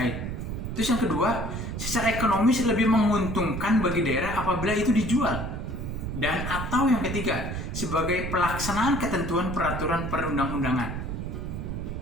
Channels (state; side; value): noise; right; rumble, 5 dB below the sound